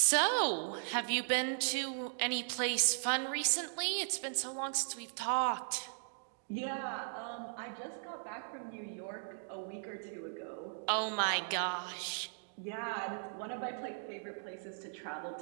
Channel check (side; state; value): left; silent; digital silence